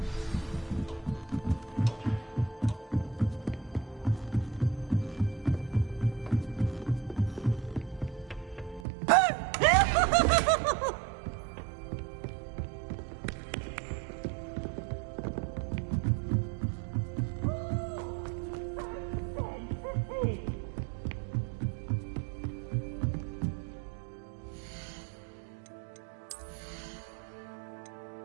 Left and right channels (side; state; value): left; drops out; at 8.8 s